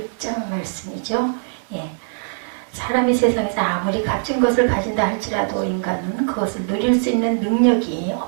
말씀이죠. 예. 사람이 세상에서 아무리 값진 것을 가진다 할지라도 인간은 그것을 누릴 수 있는 능력이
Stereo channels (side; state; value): left; silent; 63 dB below the other